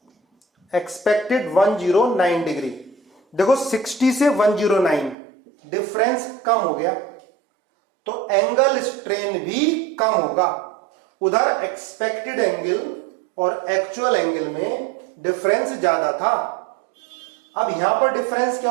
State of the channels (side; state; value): left; drops out; at 5.2 s